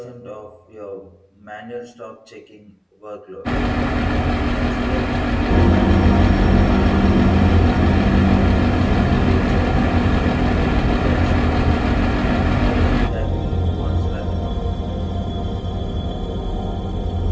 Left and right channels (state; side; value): identical; both; correlation 1.00